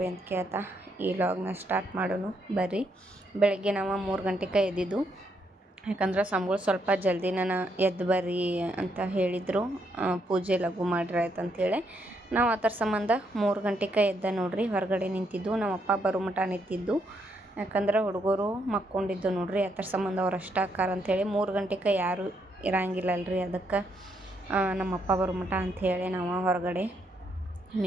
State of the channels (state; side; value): normal; both; correlation 0.76